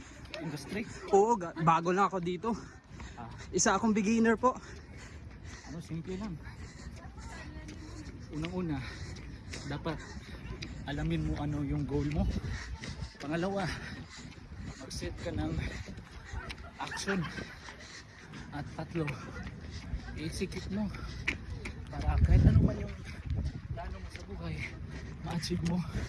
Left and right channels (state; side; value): identical; both; correlation 1.00